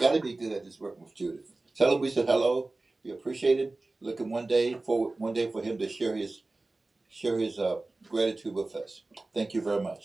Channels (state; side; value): quieter; left; 3.1 dB